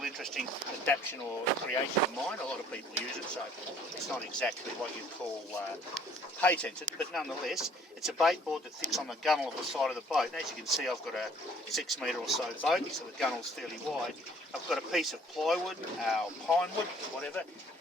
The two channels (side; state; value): both; normal; correlation 0.58